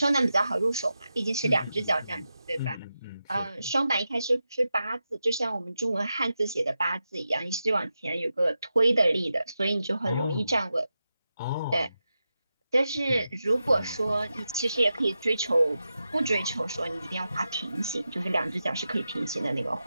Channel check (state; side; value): inverted; both; correlation -0.90